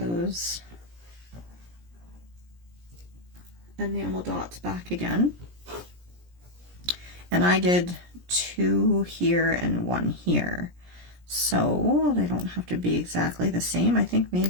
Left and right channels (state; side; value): late; left; 17 ms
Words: enamel dots back again. And I did 2 here and 1 here. So they don't have to be exactly the same. I think